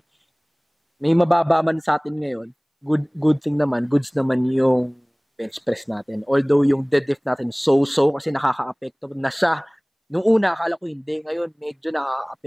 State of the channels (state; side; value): identical; both; correlation 1.00